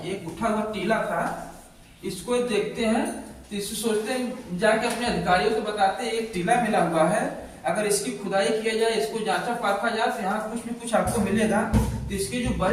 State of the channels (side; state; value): both; identical; correlation 1.00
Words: एक उठा हुआ टीला था। इसको देखते हैं तो इसको सोचते हैं, जाके अपने अधिकारियों को बताते हैं एक टीला मिला हुआ है, अगर इसकी खुदाई किया जाए, इसको जांचा परखा जाए, तो यहाँ कुछ न कुछ आपको मिलेगा। तो इसके जो